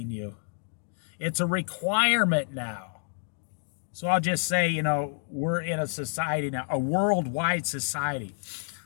you. It's a requirement now. So I'll just say, we're in a society now, a worldwide society.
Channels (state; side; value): silent; right; digital silence